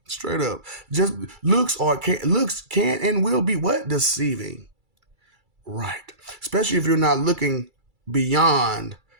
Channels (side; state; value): left; late; 2.3 ms